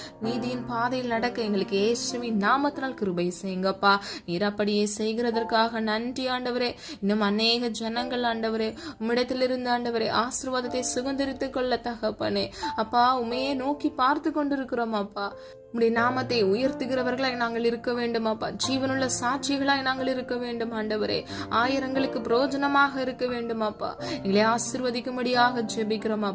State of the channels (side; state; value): both; identical; correlation 1.00